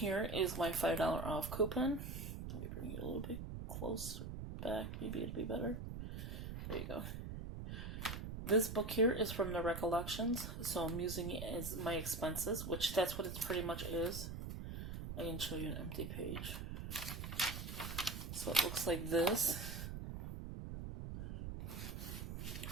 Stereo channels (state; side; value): noise; right; rumble, 6 dB below the sound